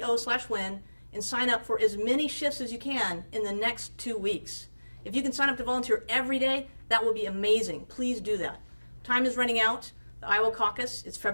and sign up for as many shifts as you can in the next 2 weeks. If you can sign up to volunteer every day, that will be amazing. Please do that. Time is running out. The Iowa caucus is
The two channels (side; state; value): both; inverted; correlation -1.00